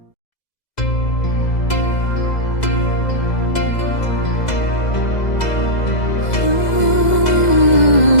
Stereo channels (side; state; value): right; late; 2.0 ms